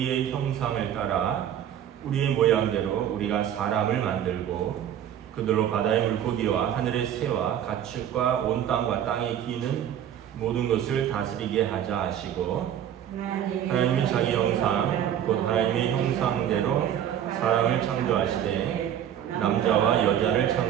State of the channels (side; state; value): left; quieter; 10.2 dB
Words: 형상을 따라 우리의 모양대로 우리가 사람을 만들고 그들로 바다의 물고기와 하늘의 새와 가축과 온 땅과 땅에 기는 모든 것을 다스리게 하자 하시고 하나님이 자기 형상 곧 하나님의 형상대로 사람을 창조하시되 남자와 여자를